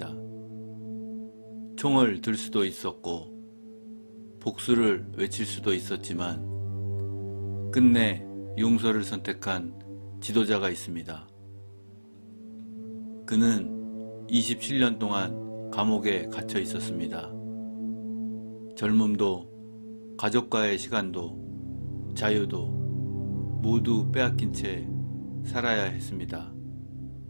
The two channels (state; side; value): inverted; both; correlation -1.00